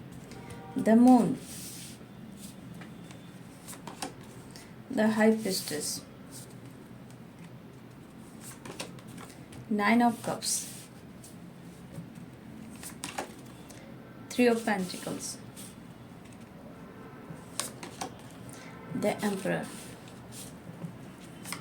the moon, the high priestess, 9 of cups, 3 of pentacles, the emperor,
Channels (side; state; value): both; identical; correlation 1.00